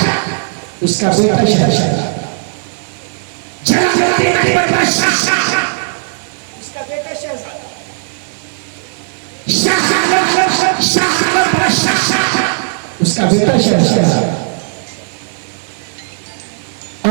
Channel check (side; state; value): left; silent; digital silence